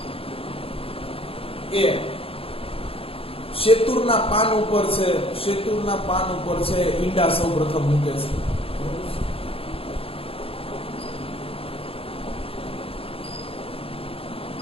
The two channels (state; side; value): late; right; 0.27 ms